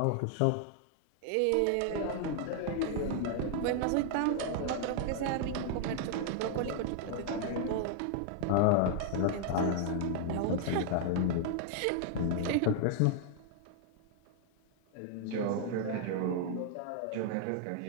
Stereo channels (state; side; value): different; both; correlation 0.00